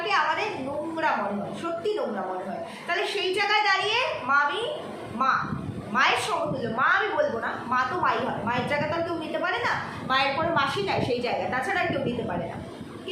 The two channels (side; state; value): both; identical; correlation 1.00